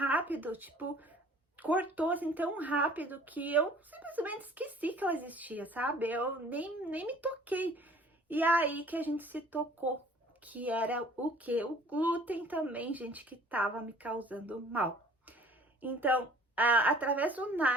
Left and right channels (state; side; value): normal; both; correlation 0.52